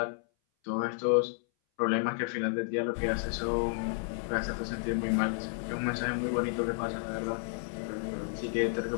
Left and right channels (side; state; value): right; silent; 57 dB below the other